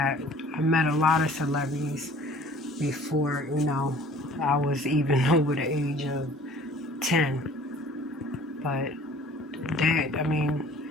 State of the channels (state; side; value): normal; both; correlation 0.50